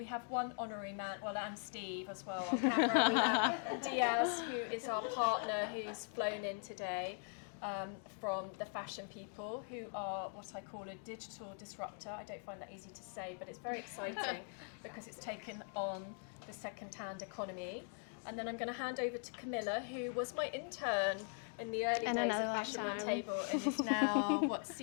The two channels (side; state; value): right; silent; 50 dB below the other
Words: have one honorary man, and Steve as well on camera. We have Diaz, who is our partner, who's flown in today from the Fashion People, who are what I call a digital disruptor. I don't find that easy to say, but it's very exciting because it's taken on the second-hand economy. And then I'm going to hand over to Camilla, who was my intern in the early days of Fashion Roundtable and is now,